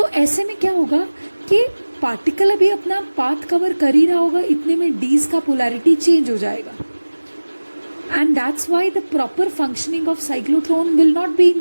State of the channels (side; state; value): both; inverted; correlation -1.00